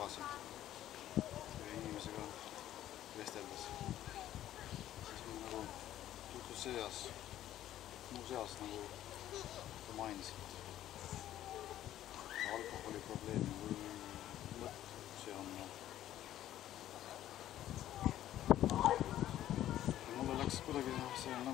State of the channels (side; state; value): right; quieter; 12.6 dB